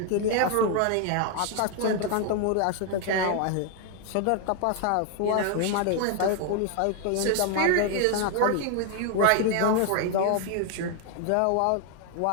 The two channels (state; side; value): different; both; correlation 0.00